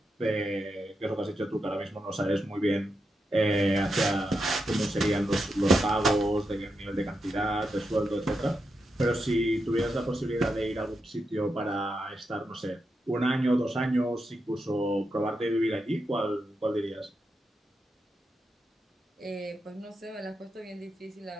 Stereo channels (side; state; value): both; normal; correlation 0.86